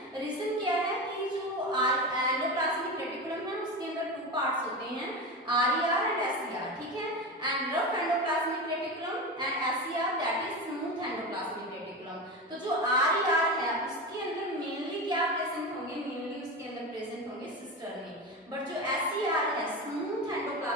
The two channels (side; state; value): both; normal; correlation 0.22